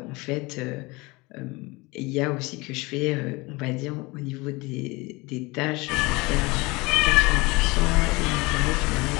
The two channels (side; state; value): right; quieter; 24.2 dB